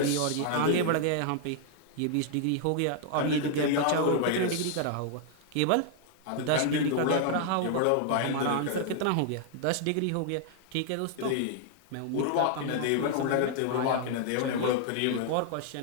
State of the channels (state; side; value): different; both; correlation 0.00